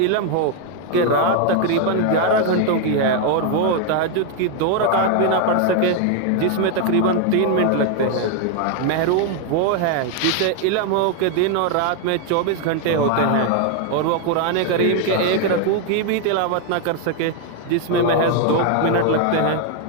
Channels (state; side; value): different; both; correlation 0.01